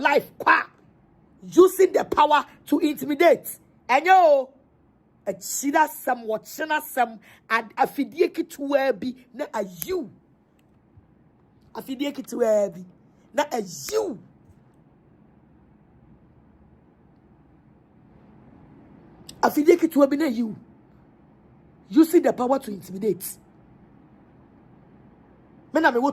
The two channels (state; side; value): identical; both; correlation 1.00